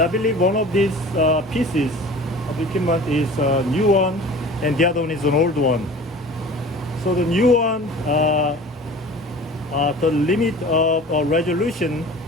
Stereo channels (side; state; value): both; normal; correlation 0.42